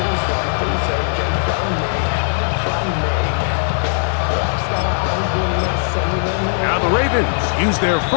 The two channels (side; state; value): right; silent; digital silence